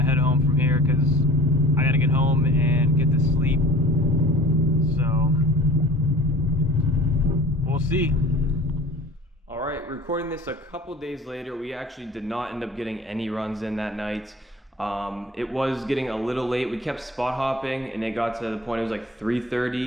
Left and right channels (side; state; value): both; normal; correlation 0.44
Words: head home from here because I gotta get home and get to sleep. So we'll see. All right, recording this a couple days later, we actually did not end up getting any runs in that night. It was getting a little late. We kept spot hopping and it got to the point, it was like